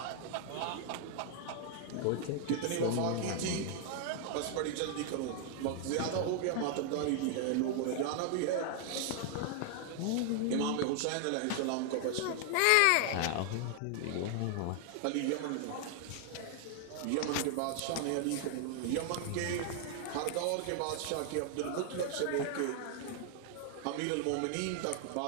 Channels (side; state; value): both; different; correlation 0.00